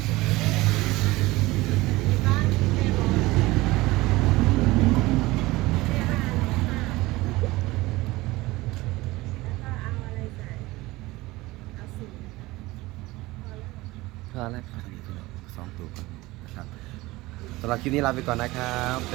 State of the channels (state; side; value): quieter; left; 20.0 dB